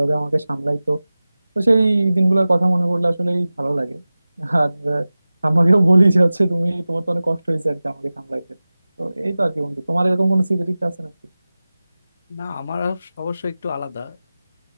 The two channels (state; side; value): inverted; both; correlation -0.97